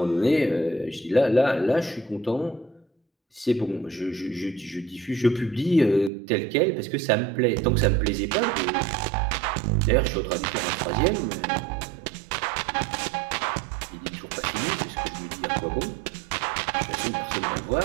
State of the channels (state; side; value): drops out; left; at 6.1 s